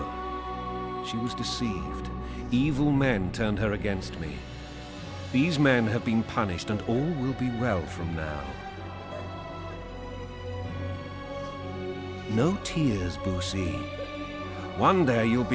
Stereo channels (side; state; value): both; identical; correlation 1.00